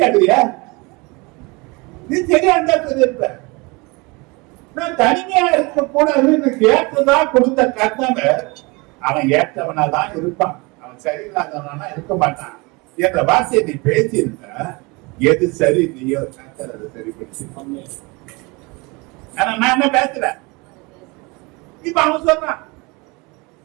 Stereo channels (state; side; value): quieter; left; 26.6 dB